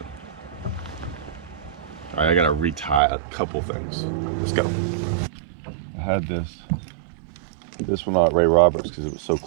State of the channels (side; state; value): left; drops out; at 3.0 s